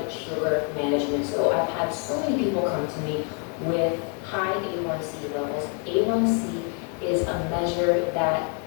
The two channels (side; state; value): right; quieter; 39.8 dB